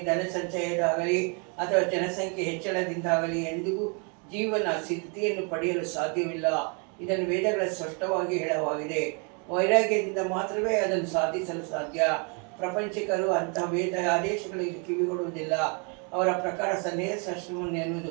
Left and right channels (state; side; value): quieter; left; 36.0 dB